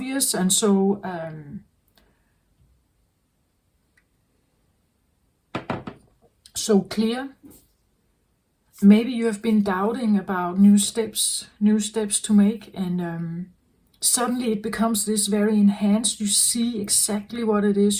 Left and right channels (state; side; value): identical; both; correlation 1.00